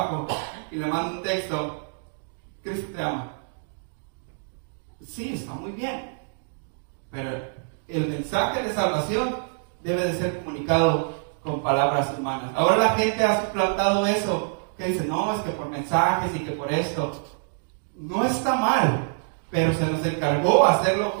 y le mando un texto, Cristo te ama. Sí, está muy bien. Pero el mensaje de salvación debe de ser comunicado con palabras humanas. Ahora la gente ha suplantado eso, que dice, no, es que por mensajes y que por esto. No está mal, pero se nos encargó hacerlo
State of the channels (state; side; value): silent; left; digital silence